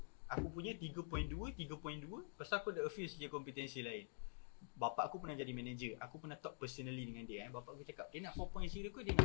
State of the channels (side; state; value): right; silent; digital silence